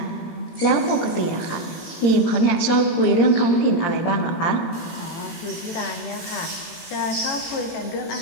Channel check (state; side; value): late; right; 17 ms